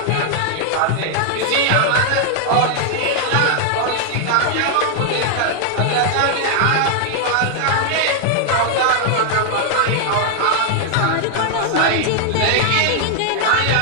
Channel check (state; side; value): different; both; correlation 0.00